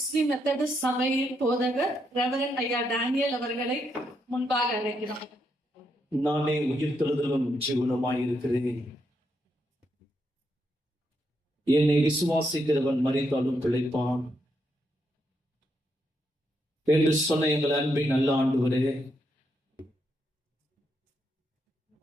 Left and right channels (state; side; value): normal; both; correlation 0.79